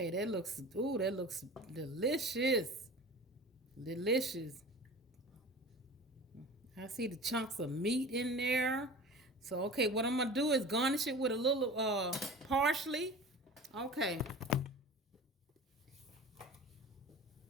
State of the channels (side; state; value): both; normal; correlation 0.37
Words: that looks delicious. Delicious. I see the chunks of meat in there. So, okay, what I'm going to do is garnish it with a little parsley. Okay.